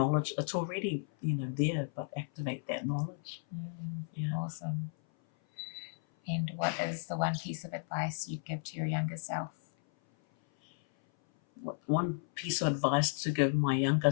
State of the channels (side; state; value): right; silent; 55 dB below the other